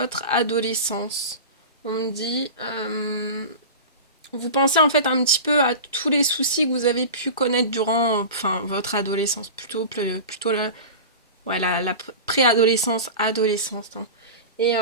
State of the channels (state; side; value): inverted; both; correlation -0.30